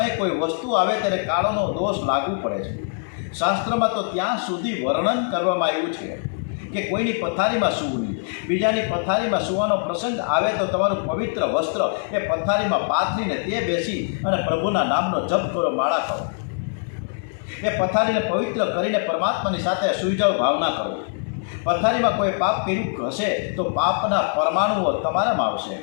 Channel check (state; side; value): silent; right; 63 dB below the other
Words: કોઈ વસ્તુ આવે ત્યારે કાળનો દોષ લાગુ પડે છે. શાસ્ત્રમાં તો ત્યાં સુધી વર્ણન કરવામાં આવ્યું છે કે કોઈની પથારીમાં સૂવું નહીં. બીજાની પથારીમાં સૂવાનો પ્રસંગ આવે તો તમારું પવિત્ર વસ્ત્ર એ પથારીમાં પાથરીને તે બેસી અને પ્રભુના નામનો જપ કરો, માળા કરો. એ પથારીને પવિત્ર કરીને પરમાત્માની સાથે સૂઈ જાઓ, ભાવના કરો. પથારીમાં કોઈ પાપ કર્યું હશે તો પાપના પરમાણુઓ તમારામાં આવશે.